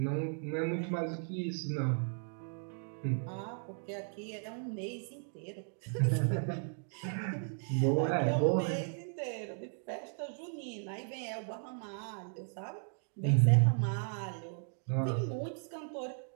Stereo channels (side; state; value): left; silent; 54 dB below the other